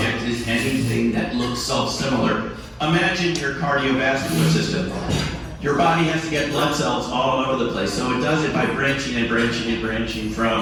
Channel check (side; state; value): both; identical; correlation 1.00